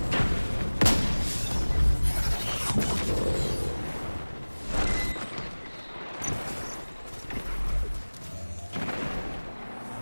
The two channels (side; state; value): both; inverted; correlation -1.00